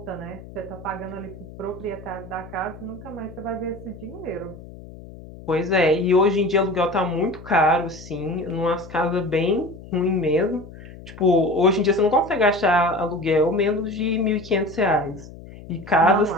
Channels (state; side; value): noise; left; hum, 16 dB below the sound